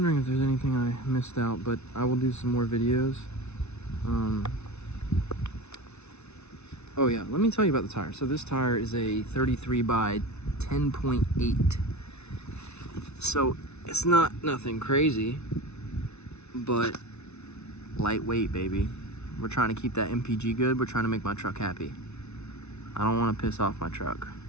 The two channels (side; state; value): right; late; 0.81 ms